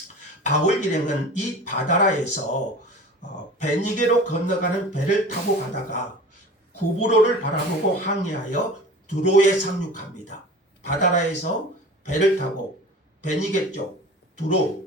바울 일행은 이 바다라에서 베니게로 건너가는 배를 타고 가다가 구브로를 바라보고 항해하여 두로에 상륙합니다. 바다라에서 배를 타고 베니게 쪽 두로,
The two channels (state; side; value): normal; both; correlation 0.38